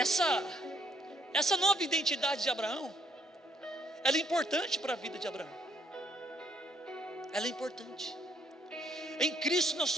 nova identidade de Abraão, ela é importante para a vida de Abraão. Ela é importante. Em Cristo nós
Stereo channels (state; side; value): normal; both; correlation 0.69